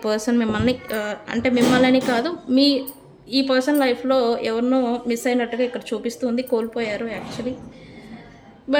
పర్సన్ మిమ్మల్ని అంటే మిమ్మల్ని కాదు, ఈ పర్సన్ లైఫ్లో ఎవరినో మిస్ అయినట్టుగా ఇక్కడ చూపిస్తుంది. కోల్పోయారు యాక్చువల్లీ.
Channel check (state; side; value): identical; both; correlation 1.00